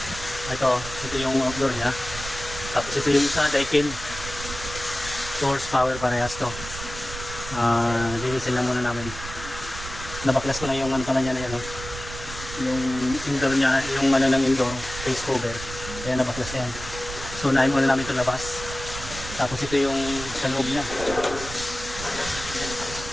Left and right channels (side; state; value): right; noise; rumble, 11 dB below the sound